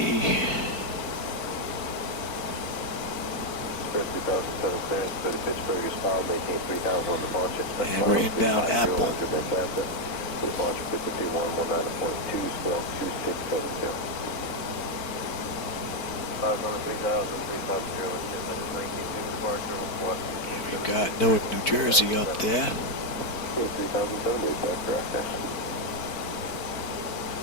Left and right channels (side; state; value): right; late; 4.5 ms